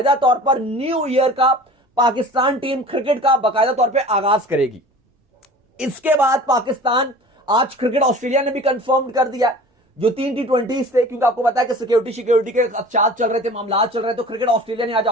तौर पर न्यू ईयर का पाकिस्तान टीम क्रिकेट का बाकायदा तौर पर आगाज करेगी। इसके बाद पाकिस्तान, आज क्रिकेट ऑस्ट्रेलिया ने भी कंफर्म कर दिया जो 3 T20 थे, क्योंकि आपको पता है कि सिक्योरिटी के चार्ज चल रहे थे, मामला चल रहे, तो क्रिकेट ऑस्ट्रेलिया ने आज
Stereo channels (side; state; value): both; normal; correlation 0.42